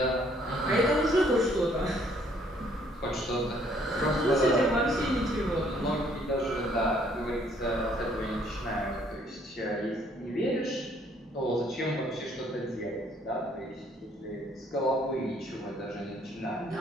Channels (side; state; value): both; normal; correlation 0.64